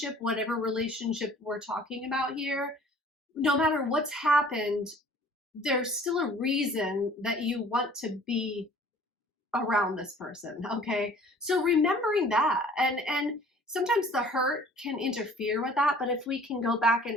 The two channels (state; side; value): normal; both; correlation 0.51